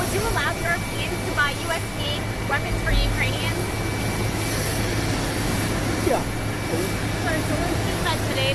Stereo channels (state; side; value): identical; both; correlation 1.00